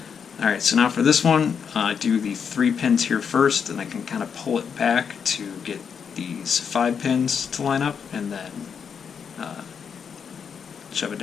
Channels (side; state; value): right; quieter; 6.8 dB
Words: All right. So now for this one, I do the 3 pins here first, and I can kind of pull it back to get these 5 pins to line up, and then shove it